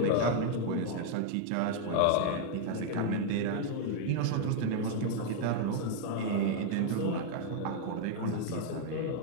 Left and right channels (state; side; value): different; both; correlation 0.00